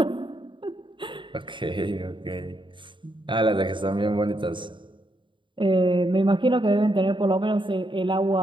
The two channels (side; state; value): left; late; 0.24 ms